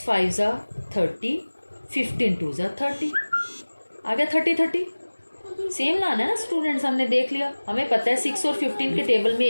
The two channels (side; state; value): both; inverted; correlation -1.00